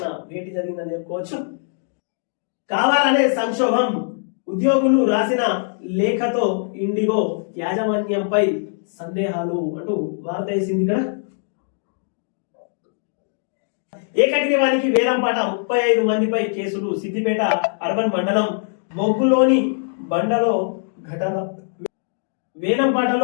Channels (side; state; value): right; silent; digital silence